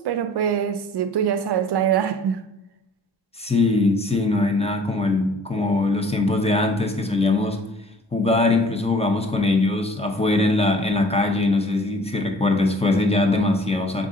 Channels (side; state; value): both; normal; correlation 0.52